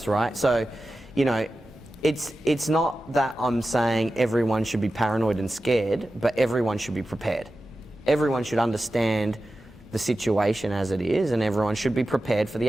right? So, you know, it's not that I'm saying everyone should be paranoid and scared, but everyone should be prepared. Everyone should understand the situation as it is, and everyone should be prepared for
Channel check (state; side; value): normal; both; correlation 0.93